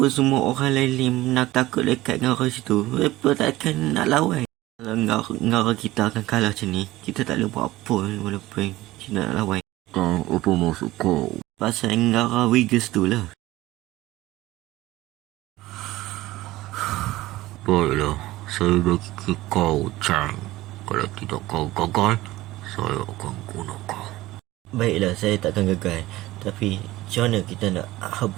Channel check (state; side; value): quieter; left; 17.4 dB